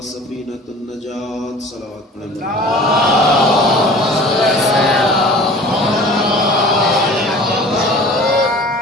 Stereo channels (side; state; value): both; normal; correlation 0.44